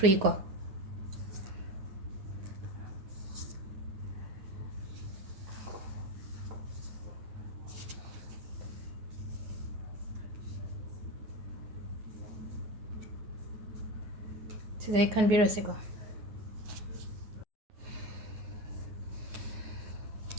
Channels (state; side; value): late; left; 9.5 ms